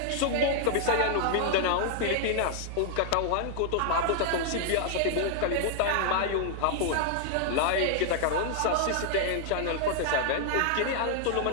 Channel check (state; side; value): different; both; correlation -0.01